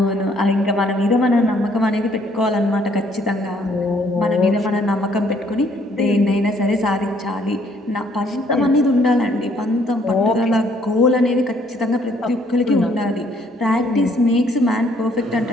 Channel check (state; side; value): normal; both; correlation 0.65